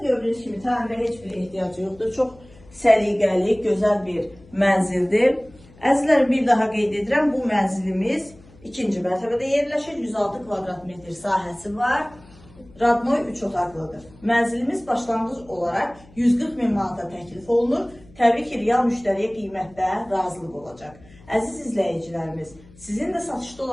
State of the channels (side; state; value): left; noise; hum, 24 dB below the sound